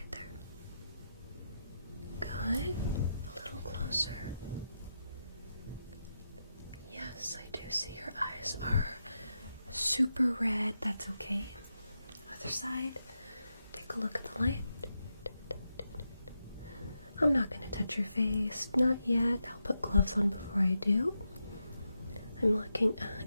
there? Good. A little closer. Yes, I do see your eyes are super red. That's okay. Other side. Take a look at the light. I'm not going to touch your face. Not yet. I'll put gloves on before I do. I'm looking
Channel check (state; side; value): inverted; both; correlation -0.86